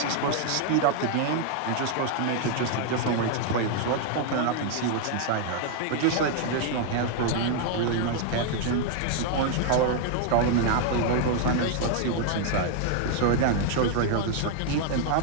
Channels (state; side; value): different; both; correlation 0.00